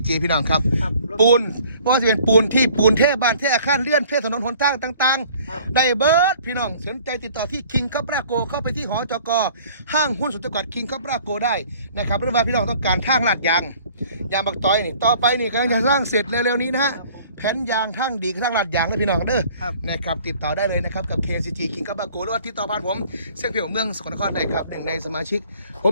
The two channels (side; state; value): both; inverted; correlation -0.53